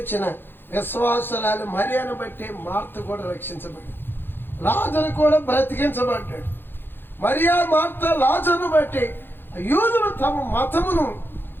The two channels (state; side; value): late; right; 0.10 ms